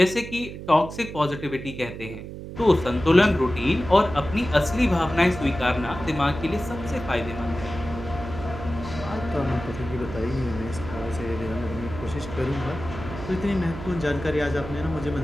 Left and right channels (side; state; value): right; noise; hum, 10 dB below the sound